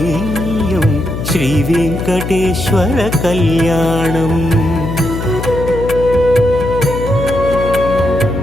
శ్రీ వెంకటేశ్వర కళ్యాణం.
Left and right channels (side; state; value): left; noise; hum, 5 dB below the sound